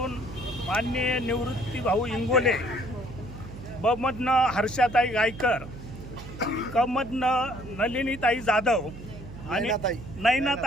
माननीय निवृत्ती भाऊ इंगोले, ब मधनं हर्षाताई गायकर, क मधनं नलिनीताई जाधव आणि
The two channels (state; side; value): noise; right; hum, 13 dB below the sound